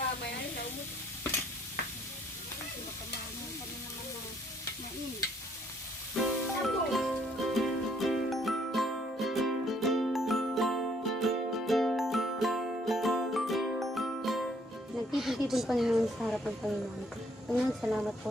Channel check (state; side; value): normal; both; correlation 0.66